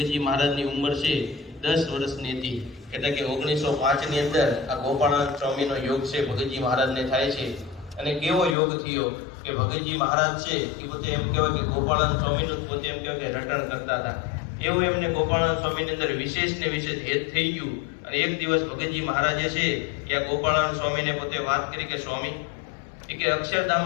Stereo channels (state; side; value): drops out; right; at 8.6 s